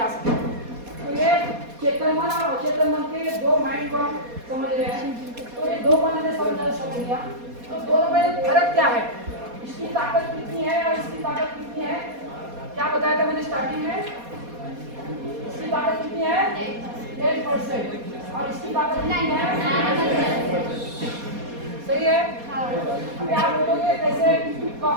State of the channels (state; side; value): late; left; 4.2 ms